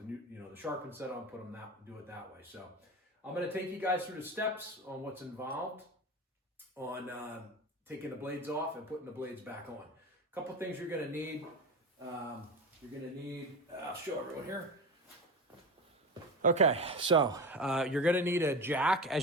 new, the sharpened set on, put them do it that way. So I'm going to take you guys through the steps on what's involved on taking the blades off and putting the blades back on. A couple things you're going to need. I'll show everyone here. Okay, so you're going to need a jack.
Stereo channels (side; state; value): both; normal; correlation 0.26